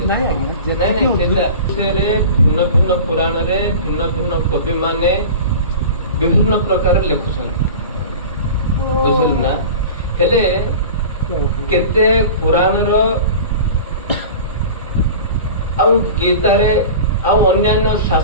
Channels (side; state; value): both; inverted; correlation -0.36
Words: नहीं भिन्न भिन्न पुराण रे भिन्न भिन्न कवि माने विभिन्न प्रकार लिखुछन बुझल ना हेले केते पुराण रो आ गीता रे आ अन्य